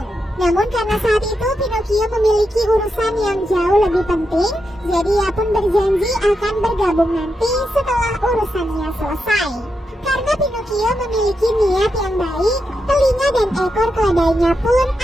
Namun karena saat itu Pinocchio memiliki urusan yang jauh lebih penting, jadi ia pun berjanji akan bergabung nanti setelah urusannya selesai. Karena Pinocchio memiliki niat yang baik, telinga dan ekor keledainya pun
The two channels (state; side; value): normal; both; correlation 0.86